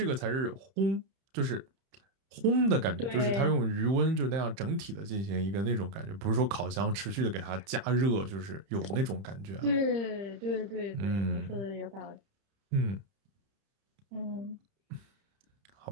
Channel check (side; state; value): left; late; 30 ms